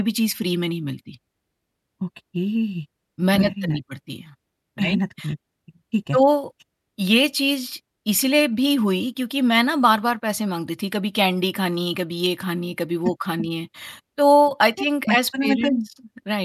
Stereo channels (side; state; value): both; identical; correlation 1.00